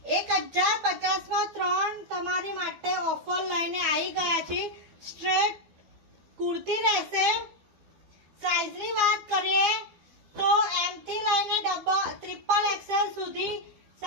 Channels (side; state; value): left; late; 12 ms